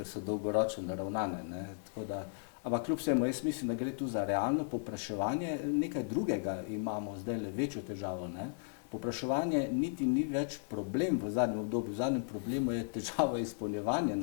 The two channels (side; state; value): right; silent; digital silence